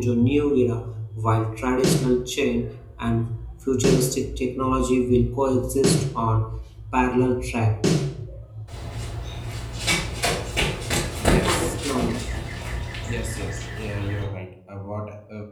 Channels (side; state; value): both; identical; correlation 1.00